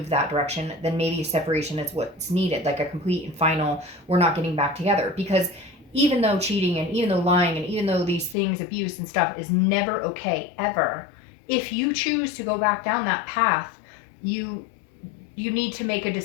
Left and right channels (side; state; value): right; drops out; at 8.3 s